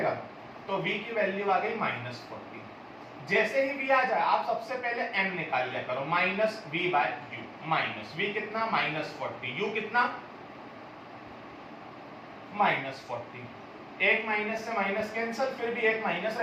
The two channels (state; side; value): identical; both; correlation 1.00